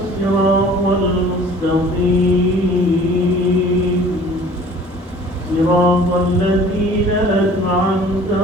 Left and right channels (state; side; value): normal; both; correlation 0.49